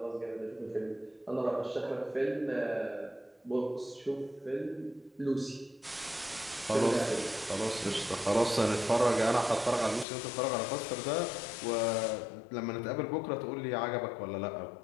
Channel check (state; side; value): drops out; right; at 10.1 s